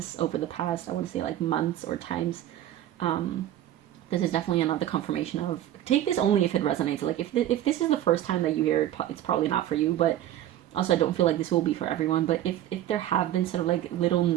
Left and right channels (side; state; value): left; quieter; 12.5 dB